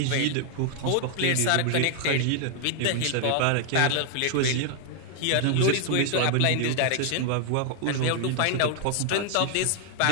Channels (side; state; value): both; different; correlation 0.00